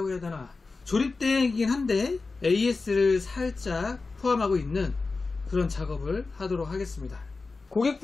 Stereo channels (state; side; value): quieter; right; 3.9 dB